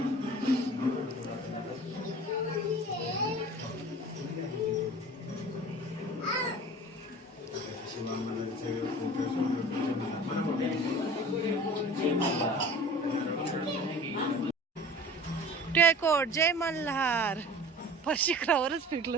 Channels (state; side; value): normal; both; correlation 0.42